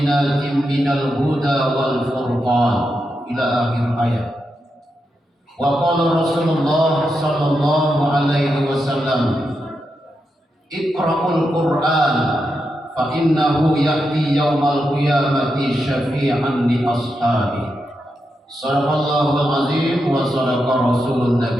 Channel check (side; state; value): both; normal; correlation 0.86